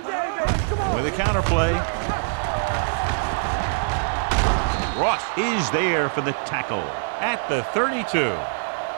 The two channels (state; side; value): silent; left; digital silence